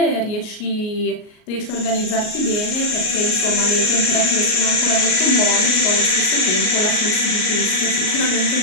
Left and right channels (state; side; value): late; right; 38 ms